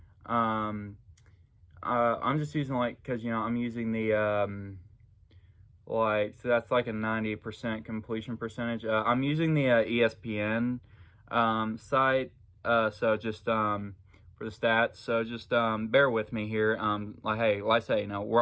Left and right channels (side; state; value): both; identical; correlation 1.00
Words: I'm just using because I'm using the so that's like a 90% completion percentage. I'm using the ESPN site. So just for the stats. So just bear with me here. Hey, like I say,